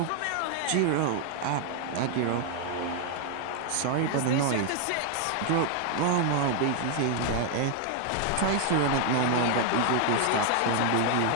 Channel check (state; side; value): different; both; correlation 0.00